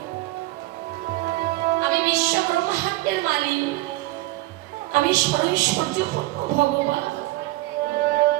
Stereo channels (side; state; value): left; quieter; 18.7 dB